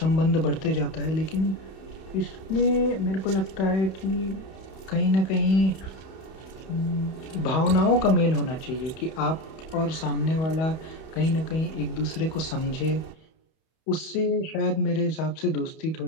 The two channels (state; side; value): late; right; 31 ms